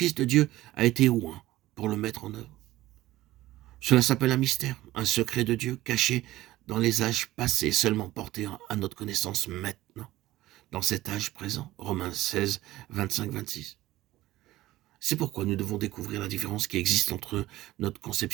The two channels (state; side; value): quieter; left; 16.4 dB